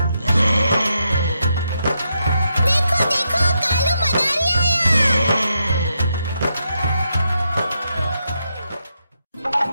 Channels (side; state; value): both; inverted; correlation -0.83